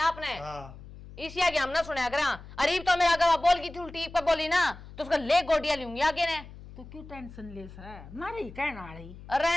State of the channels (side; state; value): left; noise; hum, 16 dB below the sound